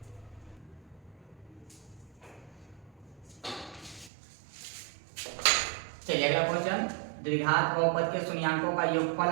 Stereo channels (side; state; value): left; drops out; at 4.1 s